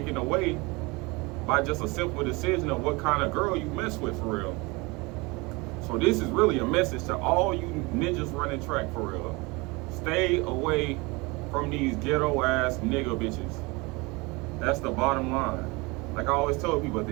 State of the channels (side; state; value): left; quieter; 25.6 dB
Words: away by just a simple decision of what kind of girl you mess with, for real. So this is really a message to all you ninjas running track, for real. Stay away from these ghetto ass nigga bitches. That's the bottom line. Like I always tell people, at